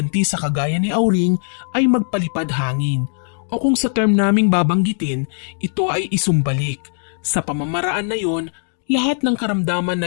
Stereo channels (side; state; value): right; silent; 66 dB below the other